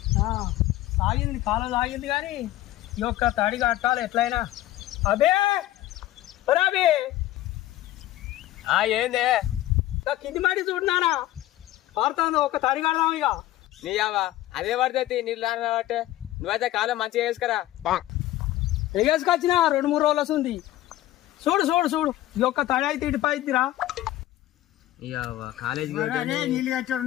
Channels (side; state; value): right; quieter; 15.0 dB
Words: తాగింది కాలం తాగింది కానీ ఈ ఒక్క తడి కట్టాలి ఎట్లయినా. అబే అబే ఏందే కింది మాటి చూడనానా పారుతాను ఒక తడి కడదాం ఇక. నీయావా అదే పడితే నీళ్ళు రాబట్టే నువ్వైతే కాలం మంచిగా వేసుకురా. ఎగేసుకొచ్చిన 2-3 రోజులు వస్తుంది. చూడు చూడు చూడు ఈ ఒక్క తడి అయితే ఇటుపోయిద్దిరా. కాలేజీ నీళ్ళు కట్టాడు